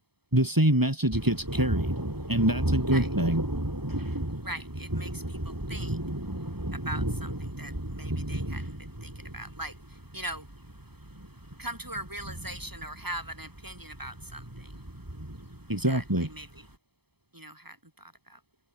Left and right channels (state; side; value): late; left; 0.97 ms